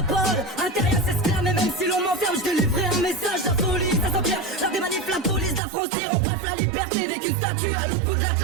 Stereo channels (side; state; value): left; drops out; at 5.6 s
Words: parole. Intérieur s'exclame et même si l'on m'enferme, je délivrerai un message. La folie, ça s'empire, l'art des manifs, la police, la frontière. En bref, la liberté n'est qu'une statue à l'autre bout de